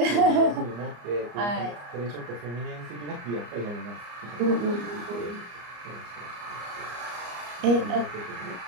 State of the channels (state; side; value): late; left; 34 ms